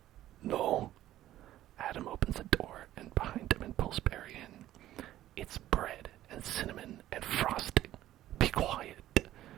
No? Adam opens the door and behind him and pulls Barry in. It's bread and cinnamon and frosting. Be quiet.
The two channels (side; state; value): left; quieter; 13.7 dB